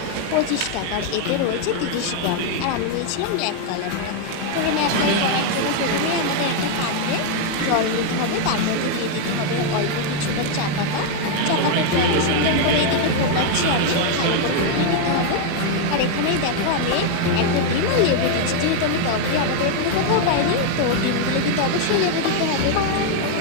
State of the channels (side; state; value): both; different; correlation 0.01